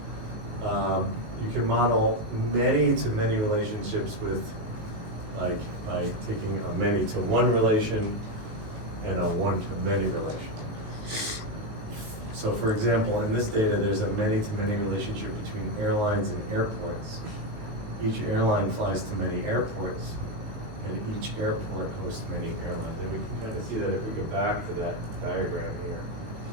You can model many-to-many relationships with, like, by taking a many-to-one relation and a one-to-many relation. So for example, in this data, there's a many-to-many relationship between airlines and airports. Each airline flies to many airports, and each airport hosts many airlines. And we can kind of see that if we go back to that diagram here.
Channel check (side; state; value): left; late; 18 ms